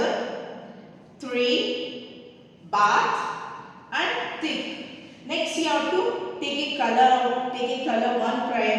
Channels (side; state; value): both; identical; correlation 1.00